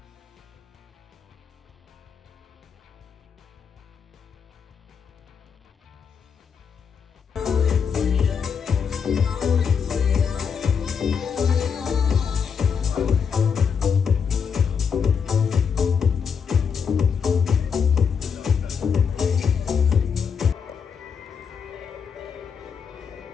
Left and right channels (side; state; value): right; quieter; 6.5 dB